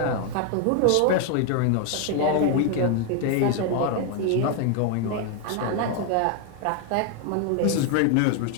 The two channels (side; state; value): both; different; correlation 0.01